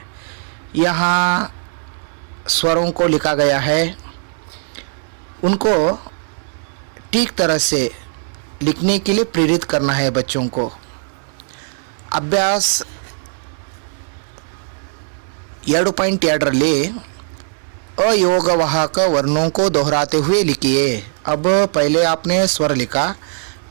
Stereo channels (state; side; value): silent; left; digital silence